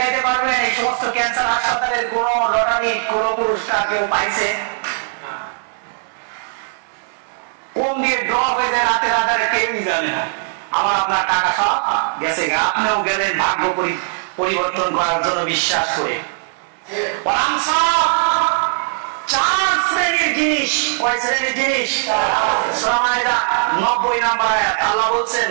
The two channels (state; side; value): silent; left; digital silence